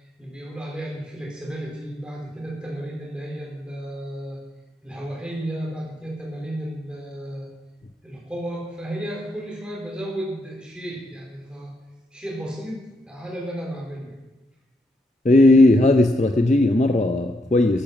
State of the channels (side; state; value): both; normal; correlation 0.78